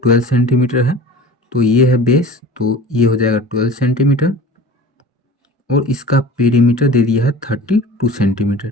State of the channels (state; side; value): normal; both; correlation 0.39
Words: 12 सेंटीमीटर है, तो ये है बेस, तो ये हो जाएगा 12 सेंटीमीटर, और इसका पेरीमीटर दे दिया है 32 सेंटीमीटर,